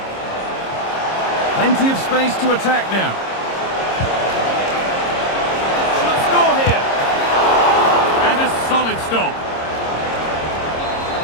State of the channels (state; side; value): late; right; 26 ms